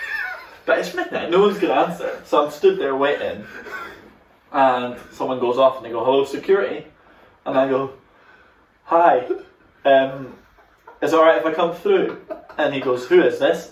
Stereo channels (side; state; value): both; identical; correlation 1.00